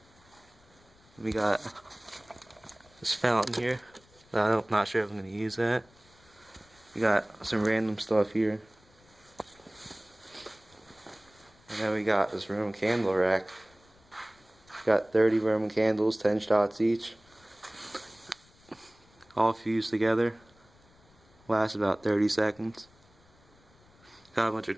We got this fountain here. I'm not sure if I'm going to use that. We got some random stuff here. And then we got this Roman candle rack. Got 30 Roman candles, 10 shots each. All fused together. Lasts about 30 seconds. Got a bunch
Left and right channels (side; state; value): left; noise; rumble, 29 dB below the sound